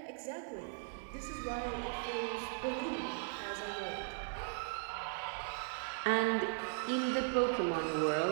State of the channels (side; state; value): left; silent; 52 dB below the other